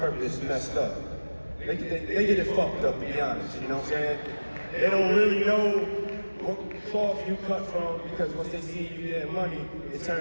messed up. They get it fucked up, to be honest, you know what I'm saying? They don't really know what cloth you cut from, because once they see you getting money, it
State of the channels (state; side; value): inverted; both; correlation -1.00